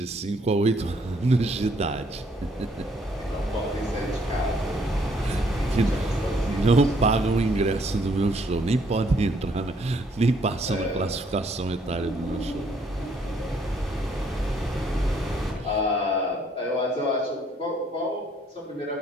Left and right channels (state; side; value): normal; both; correlation 0.67